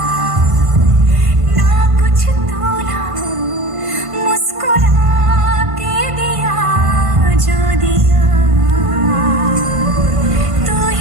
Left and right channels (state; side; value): late; left; 1.5 ms